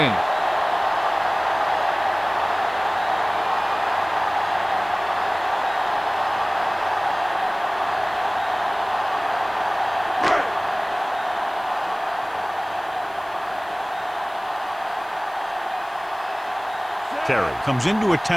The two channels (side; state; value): left; noise; hiss, 26 dB below the sound